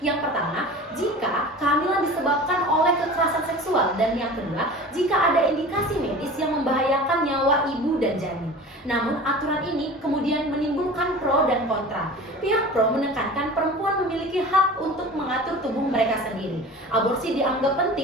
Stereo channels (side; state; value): both; normal; correlation 0.38